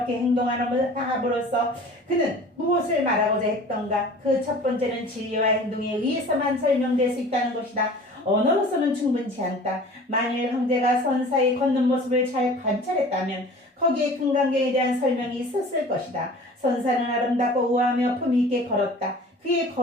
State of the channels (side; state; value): both; normal; correlation 0.44